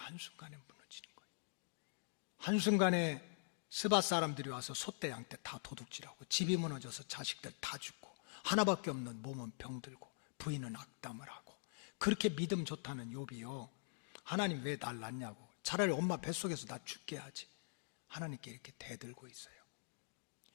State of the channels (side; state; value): right; silent; digital silence